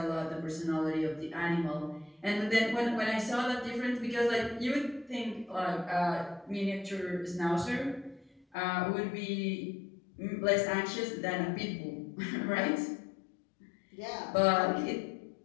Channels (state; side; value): drops out; right; at 8.5 s